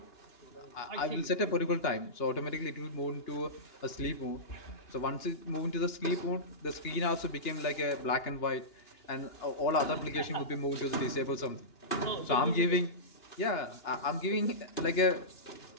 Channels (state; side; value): late; right; 2.8 ms